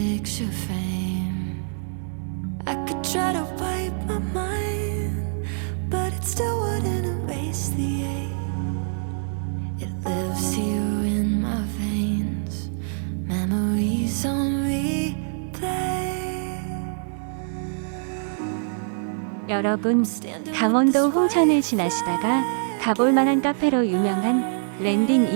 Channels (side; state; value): left; silent; digital silence